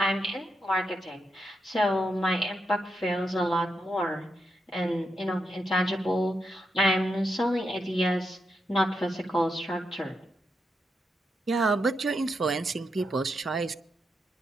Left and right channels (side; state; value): both; normal; correlation 0.84